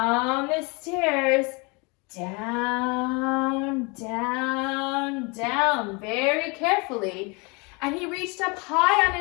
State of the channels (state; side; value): quieter; right; 29.5 dB